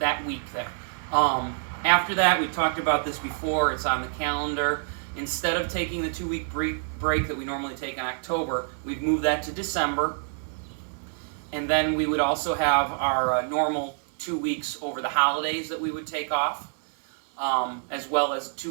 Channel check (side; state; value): left; silent; digital silence